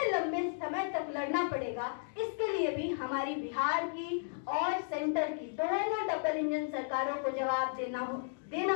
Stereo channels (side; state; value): right; silent; digital silence